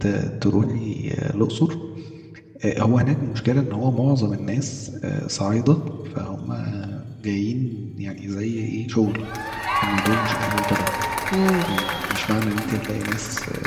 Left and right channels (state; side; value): identical; both; correlation 1.00